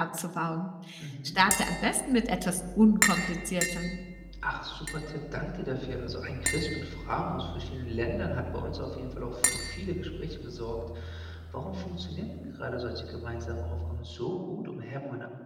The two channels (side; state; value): both; identical; correlation 1.00